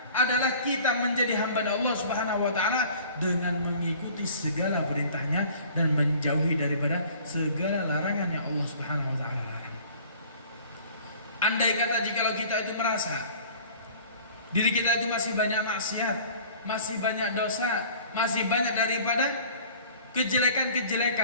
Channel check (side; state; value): both; inverted; correlation -0.49